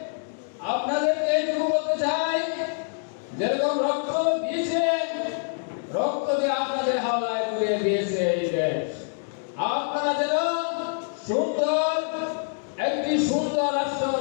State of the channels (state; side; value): silent; right; digital silence